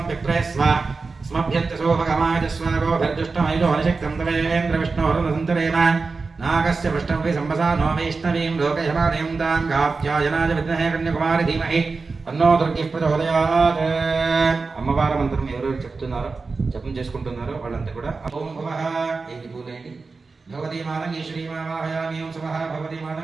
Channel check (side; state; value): left; quieter; 4.2 dB